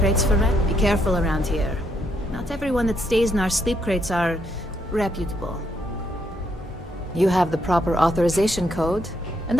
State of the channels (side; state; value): both; normal; correlation 0.75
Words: for rent? Be careful around here. Not everyone that stays in our sleep crates are reputable. You have the proper authorization code, and